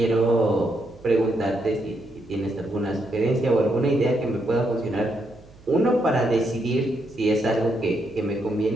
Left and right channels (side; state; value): right; noise; hum, 24 dB below the sound